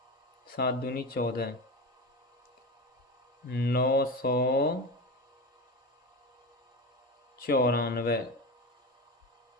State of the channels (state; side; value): normal; both; correlation 0.24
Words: 7 दूनी 14, 994।